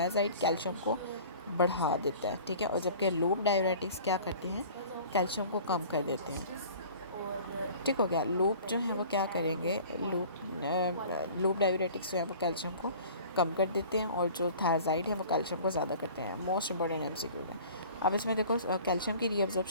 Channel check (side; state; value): both; inverted; correlation -0.45